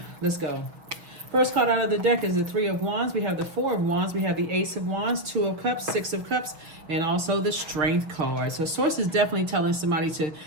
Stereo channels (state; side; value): late; left; 6.2 ms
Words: Let's go. First card out of the deck is the Three of Wands. We have the Four of Wands. We have the Ace of Wands, Two of Cups, Six of Cups, and also the Strength card. So Source is definitely telling somebody to